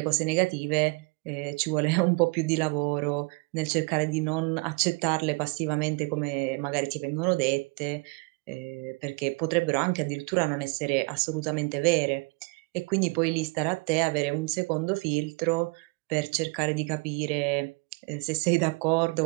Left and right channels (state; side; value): quieter; left; 29.5 dB